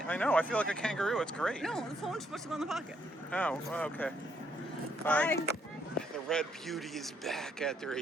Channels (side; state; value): both; normal; correlation 0.72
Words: I know. I feel like a kangaroo. It's great. No, the phone's supposed to go in the pocket. Oh, well, okay. Bye. The Red Beauty is back after a